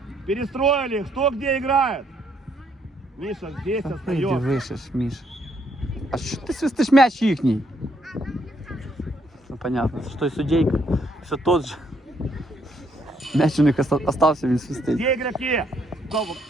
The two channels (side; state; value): both; normal; correlation 0.72